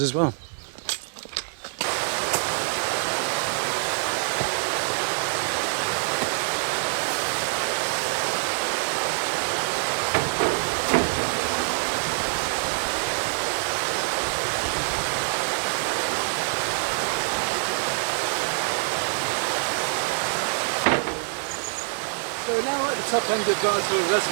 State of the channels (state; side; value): silent; left; digital silence